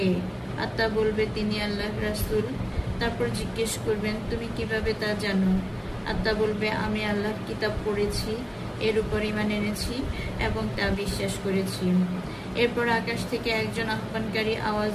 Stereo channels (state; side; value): identical; both; correlation 1.00